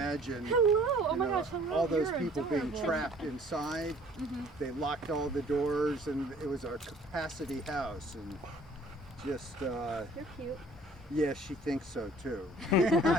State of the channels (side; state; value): both; normal; correlation 0.54